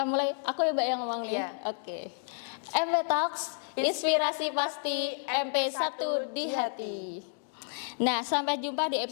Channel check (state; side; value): silent; right; digital silence